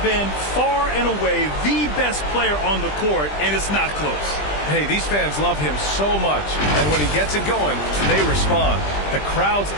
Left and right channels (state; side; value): late; right; 20 ms